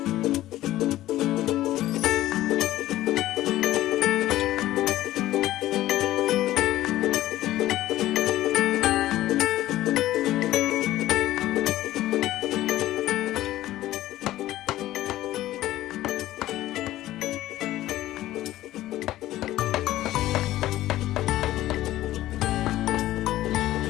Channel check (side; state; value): right; quieter; 14.9 dB